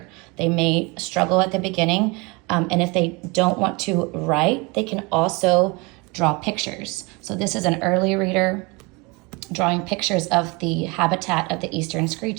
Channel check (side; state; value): left; quieter; 27.3 dB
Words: They may struggle at the beginning, and if they don't want to write, they can also draw pictures. So this is an early reader drawing pictures of the habitat of the Eastern